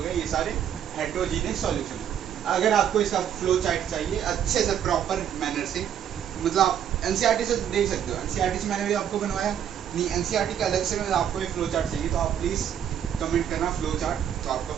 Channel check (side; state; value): left; quieter; 9.3 dB